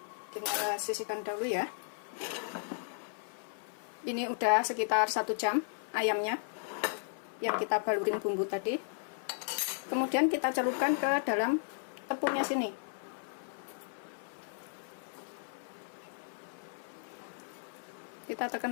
kita sisihkan dahulu ya. Ini udah sekitar 1 jam ayamnya yang kita balurin bumbu tadi. Kemudian kita celupkan ke dalam tepungnya sini. Kita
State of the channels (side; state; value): right; silent; 54 dB below the other